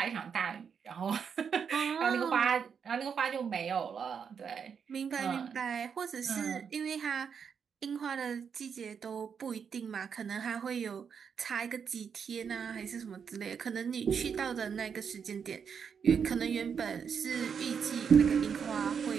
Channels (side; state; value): left; quieter; 6.8 dB